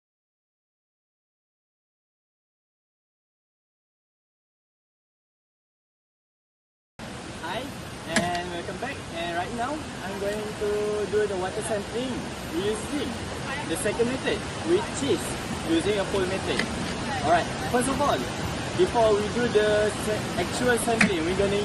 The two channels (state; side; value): identical; both; correlation 1.00